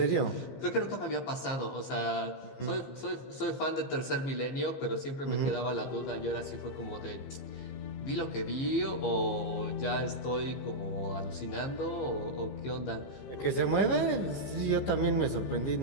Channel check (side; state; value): right; late; 15 ms